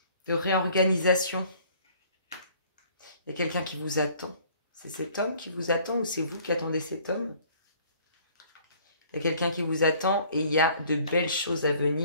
De réorganisation. Il y a quelqu'un qui vous attend. C'est cet homme qui vous attend ou c'est vous qui attendez cet homme? Il y a quelqu'un qui vous attend et il y a de belles choses à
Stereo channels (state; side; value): inverted; both; correlation -0.56